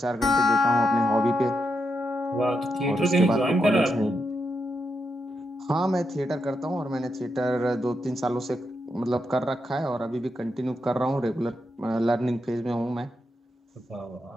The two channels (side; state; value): both; normal; correlation 0.83